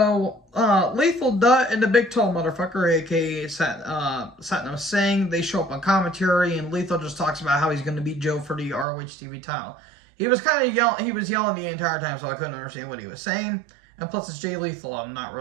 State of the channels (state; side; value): drops out; left; at 8.8 s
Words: Lethal Dutt and the Big Tall Motherfucker, a.k.a. Satnam Singh, they show up on commentary, and Lethal just talks about how he's going to beat Joe for the ROH TV title. He was kind of yelling the entire time, so I couldn't understand what he was saying. And plus, it's Jay Lethal. I'm not